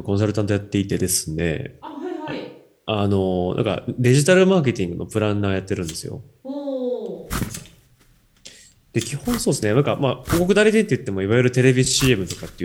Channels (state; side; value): identical; both; correlation 1.00